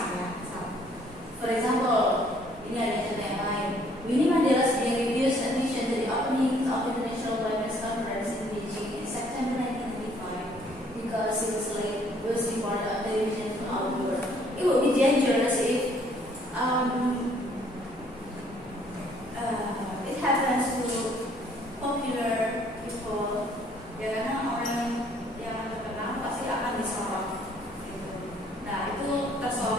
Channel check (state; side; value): normal; both; correlation 0.62